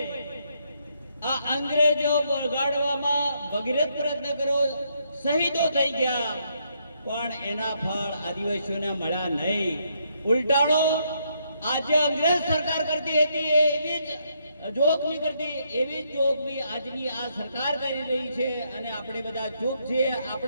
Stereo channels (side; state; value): both; inverted; correlation -0.75